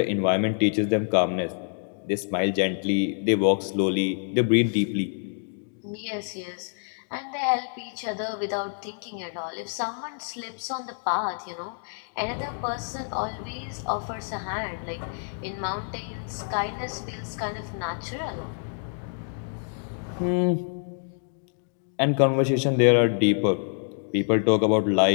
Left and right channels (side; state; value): right; silent; digital silence